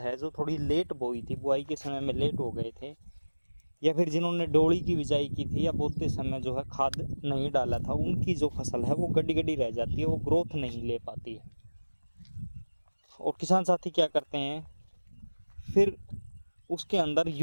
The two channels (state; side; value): inverted; both; correlation -1.00